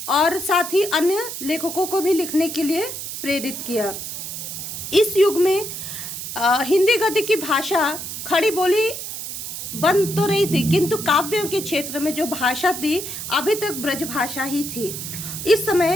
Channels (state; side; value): noise; right; hiss, 7 dB below the sound